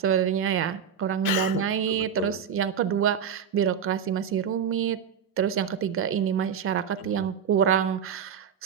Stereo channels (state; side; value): quieter; left; 7.5 dB